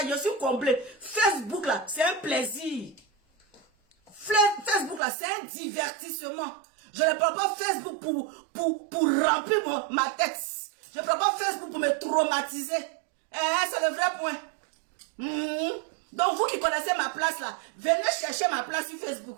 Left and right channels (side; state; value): left; drops out; at 5.0 s